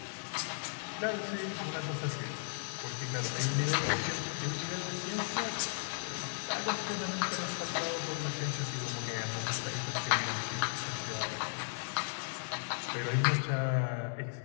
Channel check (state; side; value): silent; right; digital silence